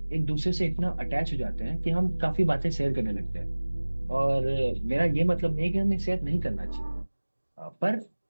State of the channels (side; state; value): both; inverted; correlation -1.00